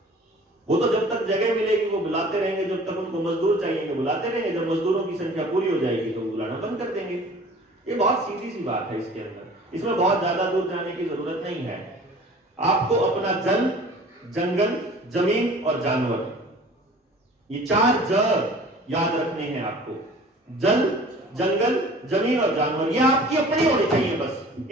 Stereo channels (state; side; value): normal; both; correlation 0.46